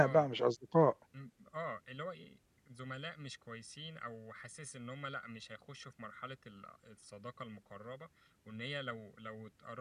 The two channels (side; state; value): both; identical; correlation 1.00